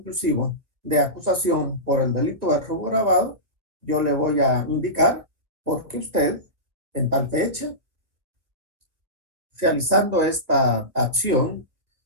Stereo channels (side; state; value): left; late; 1.8 ms